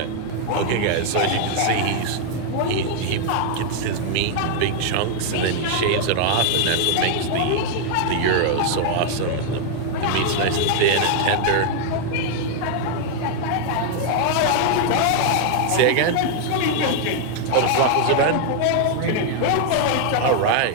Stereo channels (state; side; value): different; both; correlation 0.00